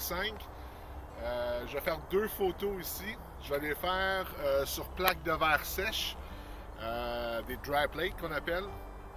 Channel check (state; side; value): identical; both; correlation 1.00